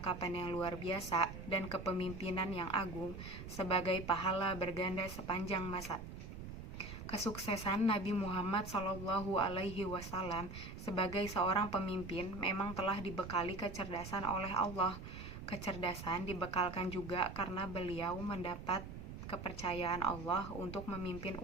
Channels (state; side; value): noise; right; rumble, 10 dB below the sound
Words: yang luar biasa dan kepemimpinan yang agung sebagai pahala berganda sepanjang masa. Kesuksesan Nabi Muhammad SAW sebagai seorang pemimpin memang telah dibekali kecerdasan oleh Allah. Kecerdasan dibekalkan juga karena beliau mendapat kepercayaan Allah untuk memimpin